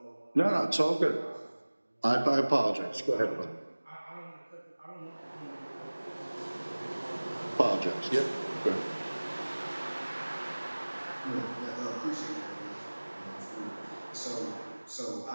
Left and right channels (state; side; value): inverted; both; correlation -1.00